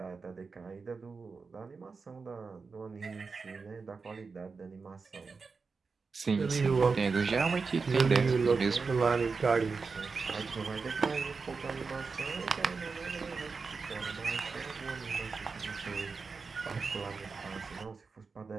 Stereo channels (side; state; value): left; quieter; 4.7 dB